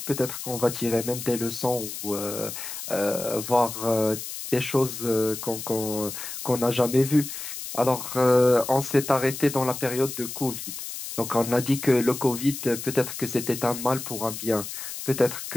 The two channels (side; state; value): left; noise; hiss, 8 dB below the sound